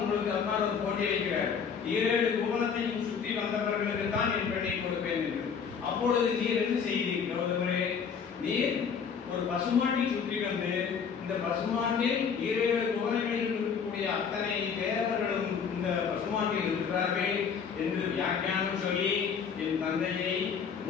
அப்பா ஒரு போட்டி வைக்கிறார். 7 புவனத்தையும் சுற்றி வந்தவர்களுக்கு தான் என் பெண்ணை கொடுப்பேன் என்று. அப்பொழுது நீர் என்ன செய்தீர் கௌதமரே? நீர் ஒரு பசுமாட்டை சுற்றி வந்து இந்த பசுமாட்டில் 7 புவனங்களில் இருக்கக்கூடிய அத்தனை தேவர்களும் இந்த பசுமாட்டில் இருக்கிறார்கள் என்று வியாக்கியானம் சொல்லி என் தந்தையை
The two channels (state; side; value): quieter; right; 6.5 dB